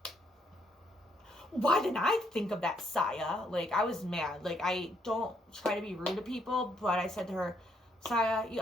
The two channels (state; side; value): normal; both; correlation 0.72